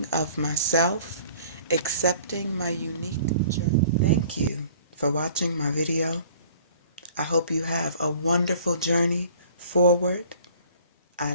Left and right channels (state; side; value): inverted; both; correlation -0.51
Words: of myself, accepting my unique journey. Thank you for watching my video. I hope you have a wonderful journey forward. I